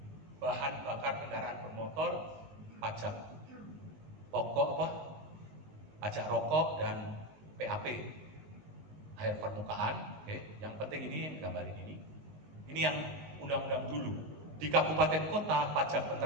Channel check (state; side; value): late; left; 19 ms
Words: bahan bakar kendaraan bermotor, pajak pokok apa? Pajak rokok dan PAP, air permukaan. Oke. Yang penting ini gambarin ini. Ini yang undang-undang dulu. Di kabupaten kota, pajak